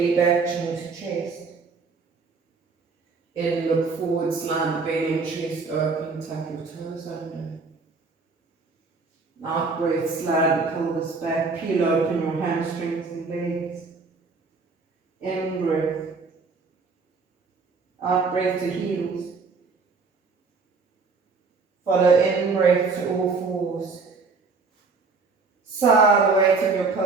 back, chin to chest. In, look forward, slide the belly and chest open, tuck your toes under. Out breath, slide the pelvis back, peel open your hamstrings and legs. In breath. Out breath to heels. Follow in breath to all fours. Sigh the weight of your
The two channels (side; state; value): left; quieter; 4.4 dB